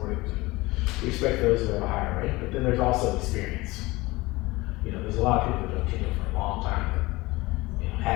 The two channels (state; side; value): quieter; right; 21.2 dB